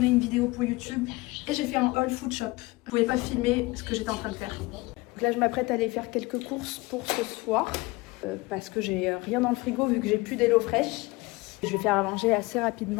une vidéo pour YouTube et j'ai fait un haul food shop. Je pouvais pas filmer ce que j'étais en train de faire. Donc là je m'apprête à aller faire quelques courses pour ce soir parce que j'ai rien dans le frigo vu que j'ai plus d'Hello Fresh. Je vais faire à manger assez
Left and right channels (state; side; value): quieter; right; 22.7 dB